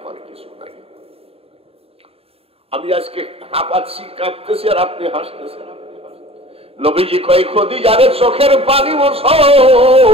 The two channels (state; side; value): late; left; 0.28 ms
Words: কিছু নাই। আমি আজকে হাঁপাচ্ছি, কাঁপতেছি, আর আপনি হাসতেছেন। নবীজি কয়, খাদিজারে চোখের পানি মোছো,